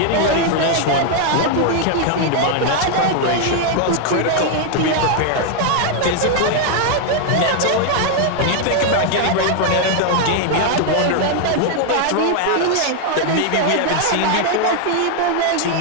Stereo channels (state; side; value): different; both; correlation 0.00